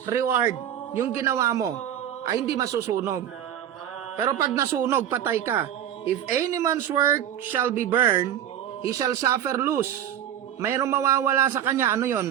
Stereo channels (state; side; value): quieter; left; 10.5 dB